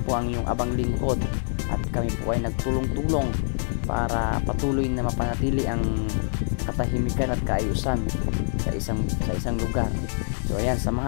po ang iyong abang lingkod at kami po ay nagtulong-tulong para patuloy na mapanatili ang katahimikan at kaayusan sa isang lugar. So ayan,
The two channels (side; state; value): right; silent; 61 dB below the other